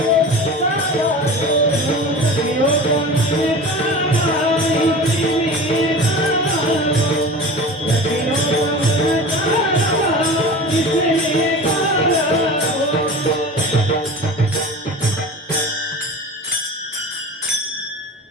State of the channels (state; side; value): normal; both; correlation 0.34